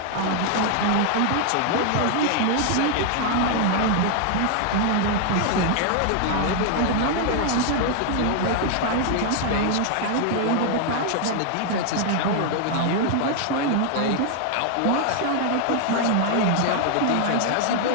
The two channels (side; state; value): both; different; correlation 0.00